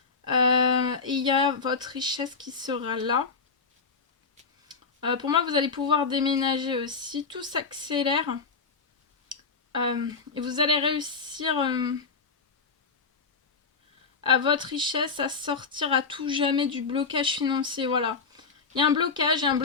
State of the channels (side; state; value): right; quieter; 4.8 dB